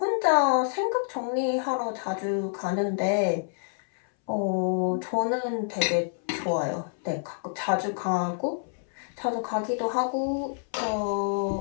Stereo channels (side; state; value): right; silent; 60 dB below the other